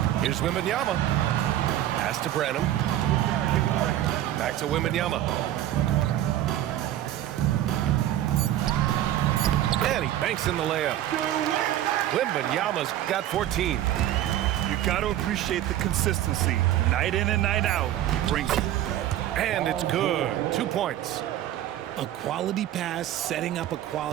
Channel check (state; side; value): quieter; left; 12.7 dB